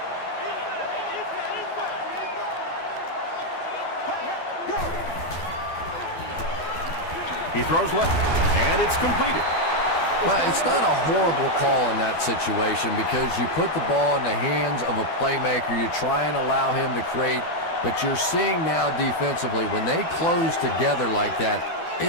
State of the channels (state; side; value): late; right; 12 ms